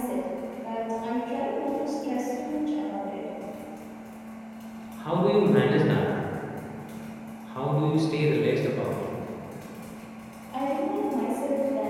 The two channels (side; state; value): both; identical; correlation 1.00